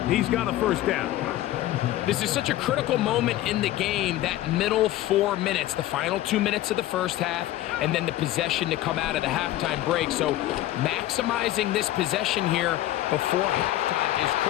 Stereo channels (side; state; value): right; quieter; 14.7 dB